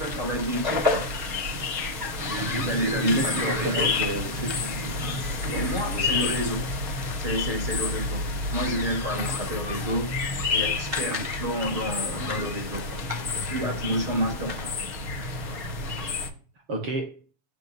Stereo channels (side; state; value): left; late; 7.1 ms